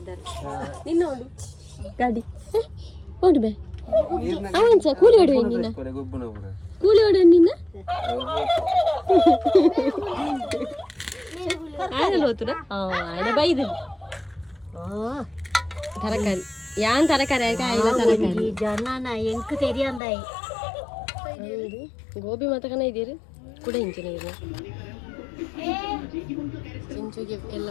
ಇದ್ದಾರೆ. ನಿನ್ನ ನೋಡು ಗಾಡಿ ನೋಡು ಬೇ ಅವನ್ಸ ಕೂಲಿ ಹೊಡುವ ನಿನ್ನ ಕೂಲಿ ಹೊಡುವ ನಿನ್ನ ಆಯಲ್ಲ ಹೋತುರ ಆಯ್ನ ಬೈದ ತರಕಾರಿ ಯಾನ್ ತರಕಾರಿ ಆಯ್ಲ ತರಕಾರಿ ಜನ ಎಂಕ್ ತೆರಿಯಂದಾಯಿ ಗೋಬಿ ಮತಕನ ಇದೀರಿ ಕೂಡ ಇಂಚಿನ ಇದು ಚಿಂಚುಗೆ ಎಲ್ಲ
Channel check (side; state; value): right; drops out; at 20.0 s